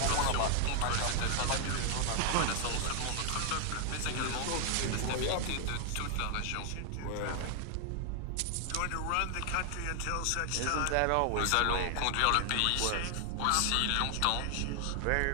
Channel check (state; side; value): different; both; correlation 0.00